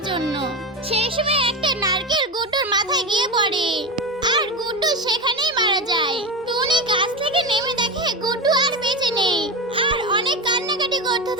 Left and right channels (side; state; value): both; normal; correlation 0.20